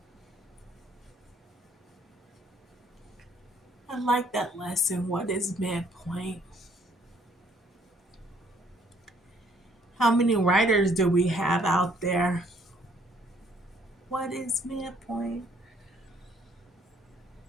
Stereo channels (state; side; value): normal; both; correlation 0.64